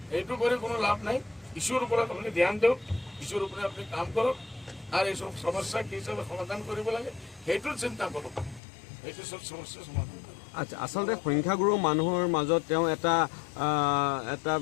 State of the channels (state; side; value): drops out; right; at 8.6 s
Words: এইটো কৰি কোনো লাভ নাই। ইস্যুৰ ওপৰত আপুনি ধ্যান দিয়ক, ইস্যুৰ ওপৰত আপুনি কাম কৰক, আৰ এইসব সমস্যা কি হিসাবে সমাধান কৰিব লাগে সেইটোৰ চিন্তা কৰক, সেইটো সব সমস্যা সমাধান কৰক। আচ্ছা, আচলতে সংখ্যাগুৰু মানুহৰ মাজত তেওঁ এটা